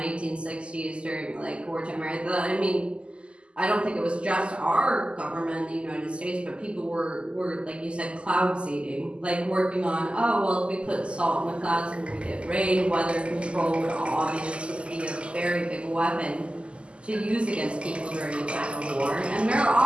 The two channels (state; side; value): late; left; 0.053 ms